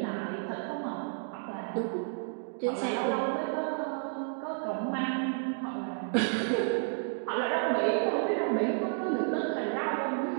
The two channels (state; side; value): silent; left; digital silence